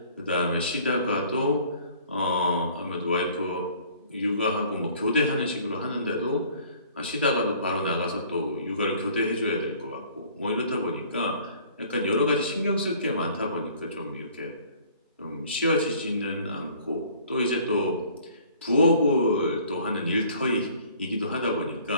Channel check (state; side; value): inverted; both; correlation -0.53